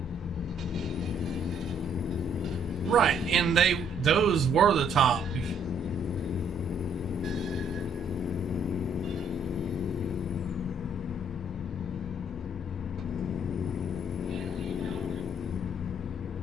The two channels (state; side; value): normal; both; correlation 0.66